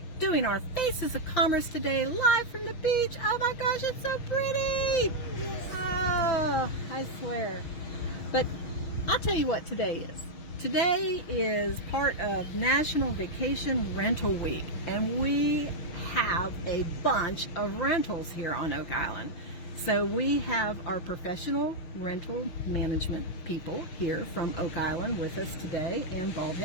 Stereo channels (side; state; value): right; late; 6.3 ms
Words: doing our Faces of Commerce today, live from the beach. Oh my gosh, it's so pretty! Oh, I swear. But I'll tell you what today is. Today is part of National Vacation Rental Week, and we have a bunch of rentals here on Oak Island. So we have our professional rental management people here from Oak Island with us today and